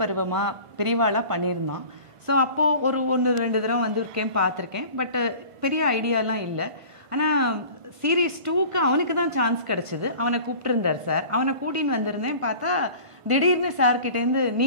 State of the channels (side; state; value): left; late; 1.5 ms